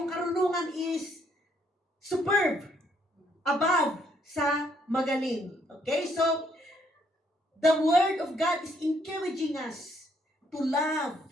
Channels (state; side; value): normal; both; correlation 0.70